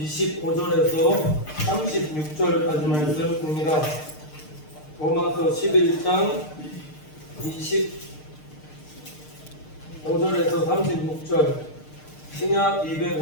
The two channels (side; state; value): right; late; 6.6 ms